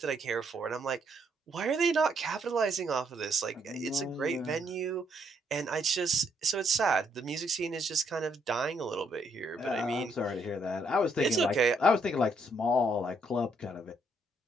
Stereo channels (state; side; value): normal; both; correlation 0.72